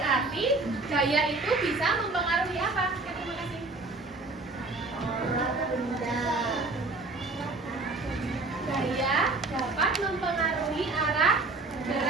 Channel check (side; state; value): left; quieter; 3.4 dB